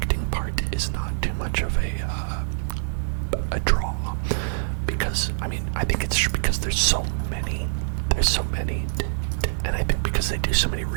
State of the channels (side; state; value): left; silent; 62 dB below the other